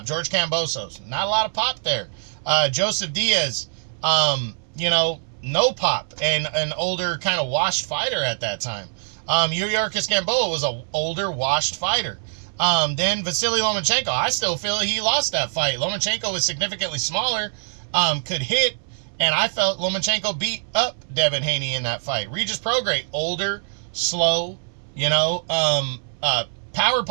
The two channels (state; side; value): silent; left; 63 dB below the other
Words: George Kambosos, not a lot of pop there. Joseph Diaz, you know, no pop, and an older kind of washed fighter at that time. Yuriorkis Gamboa was an older washed fighter. Then Vasily Lomachenko, I still feel he lost that fight. Lomachenko was significantly smaller, could hit, and I felt Lomachenko beat up Devin Haney in that fight. Regis Prograis, older, slow, you know, power